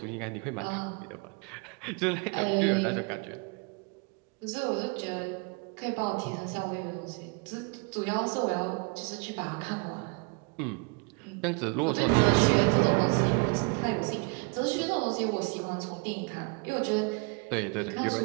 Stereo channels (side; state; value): left; quieter; 32.5 dB